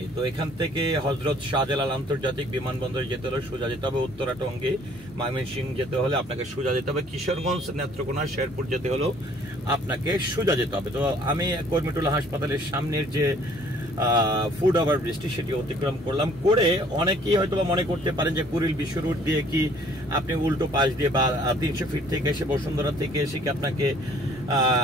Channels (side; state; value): both; normal; correlation 0.58